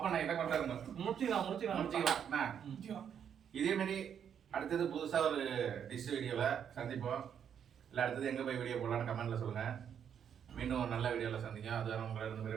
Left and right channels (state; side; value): quieter; left; 8.3 dB